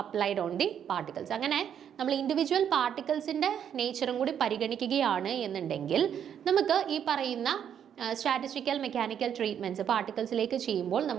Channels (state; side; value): quieter; left; 8.9 dB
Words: applied on the particles. അങ്ങനെ നമ്മൾ ഇൻഡിവിജ്വൽ പാർട്ടിക്കിൾസിൻ്റെ നേച്ചറും കൂടി പരിഗണിക്കുകയാണ് എന്നുണ്ടെങ്കിൽ നമുക്ക് ഈ പറയുന്ന സ്റ്റാറ്റിസ്റ്റിക്കൽ മെക്കാനിക്കൽ ട്രീറ്റ്മെൻറ്റ്സ് പാർട്ടിക്കിൾസിലേക്ക് ചെയ്യുമ്പോൾ